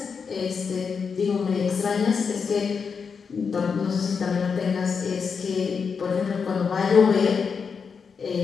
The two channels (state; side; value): quieter; right; 5.8 dB